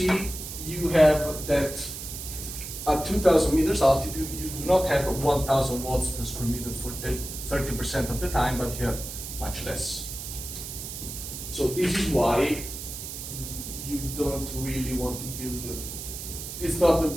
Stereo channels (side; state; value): right; noise; hiss, 8 dB below the sound